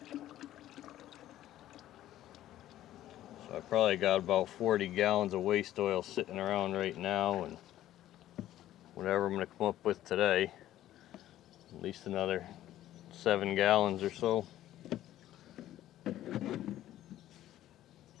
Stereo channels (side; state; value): right; quieter; 13.3 dB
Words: So I probably got about 40 gallons of waste oil sitting around right now, and whatever I'm gonna come up with today, at least another 7 gallons or so.